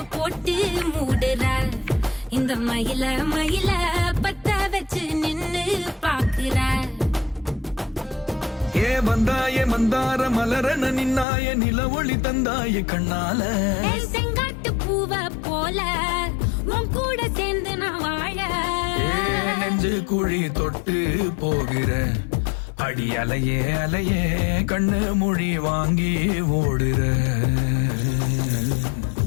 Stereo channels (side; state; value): right; drops out; at 11.2 s